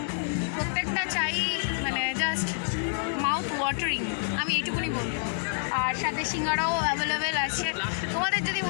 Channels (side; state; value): right; silent; 59 dB below the other